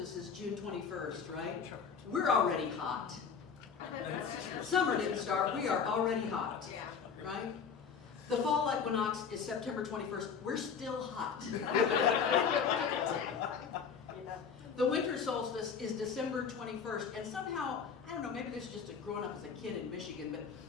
is June 21st, right? We're already hot. Summer didn't start, we are already hot, right? The fall equinox is September 21st, we're still hot. The winter solstice is December 21st, and somehow, I don't know, maybe this is just growing up as a kid in Michigan, but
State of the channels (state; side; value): quieter; right; 6.4 dB